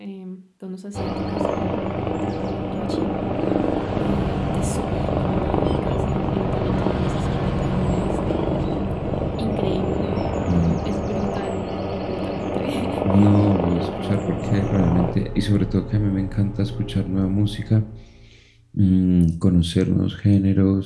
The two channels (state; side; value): identical; both; correlation 1.00